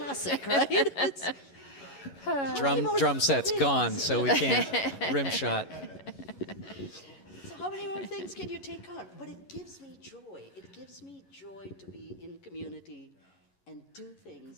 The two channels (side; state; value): right; late; 11 ms